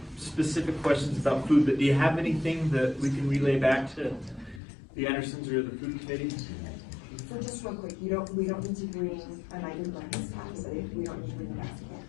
specific questions about food, but do you have anything that we can relay back to the Andersons or the food committee? So just real quick, we don't need to bring an item breakfast tax, we don't need to bring a basket.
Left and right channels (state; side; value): drops out; right; at 4.6 s